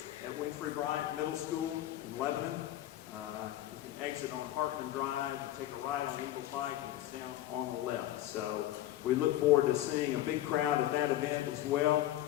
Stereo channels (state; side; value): quieter; right; 13.8 dB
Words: at Winfrey Bryant Middle School in Lebanon. You can exit on Parkman Drive and take a ride on Eagle Pike, and it's down on the left. So we look forward to seeing a big crowd at that event as